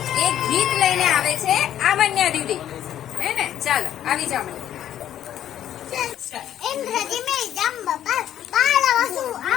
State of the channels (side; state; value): right; quieter; 11.1 dB